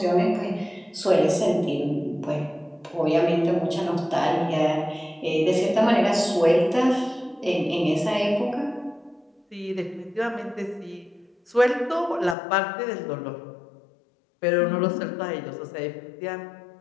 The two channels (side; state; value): right; drops out; at 12.4 s